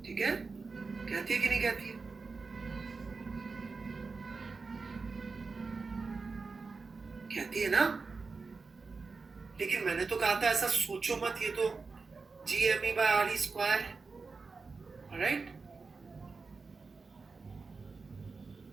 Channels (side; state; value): left; quieter; 4.4 dB